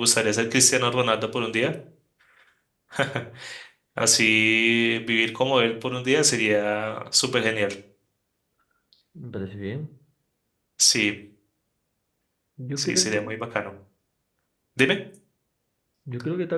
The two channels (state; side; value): identical; both; correlation 1.00